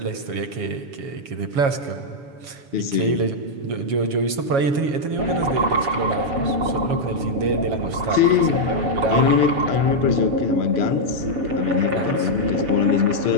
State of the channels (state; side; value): late; left; 7.2 ms